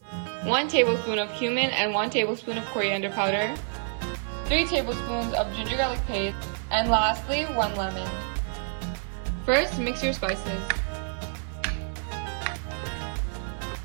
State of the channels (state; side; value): silent; left; 57 dB below the other